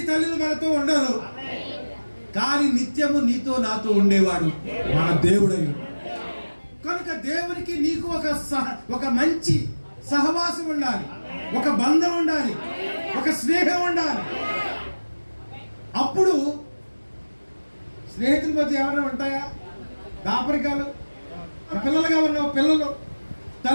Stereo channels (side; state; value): both; inverted; correlation -1.00